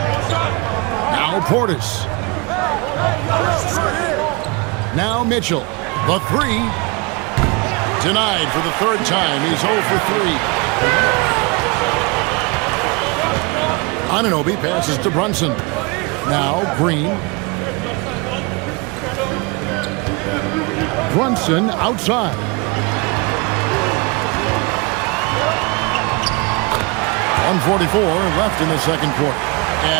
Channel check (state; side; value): quieter; left; 28.6 dB